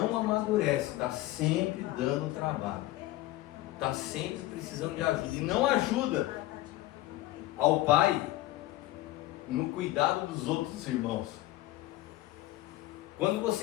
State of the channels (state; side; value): quieter; right; 16.6 dB